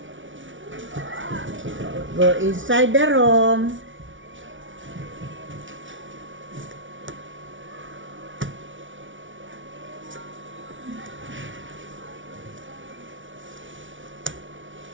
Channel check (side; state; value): left; late; 0.56 ms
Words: Go inside the room.